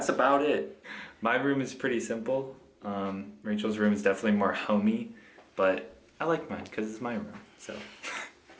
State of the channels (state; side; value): identical; both; correlation 1.00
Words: about it. My room is pretty simple. Rachel's room is definitely more homey, but I like mine because it's my room, so.